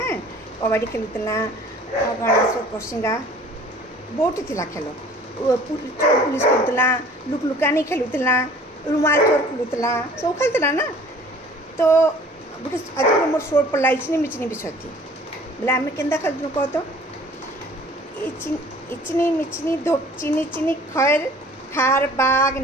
कबड्डी खेलुला काଣା सब कोसिंगा बहुत थिला खेल चोर पुलिस खेलुला लुकलुकानी खेलुला रुमाल चोर खेलुला सब खेलुला ना तो गोटे आज मोर शोर पड़ा इचनी मिचनी विषय थी बोले आम के खेलु कह तो इचनी मिचनी धोप चिनी चिनी खैर खार बाग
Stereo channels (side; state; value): both; normal; correlation 0.50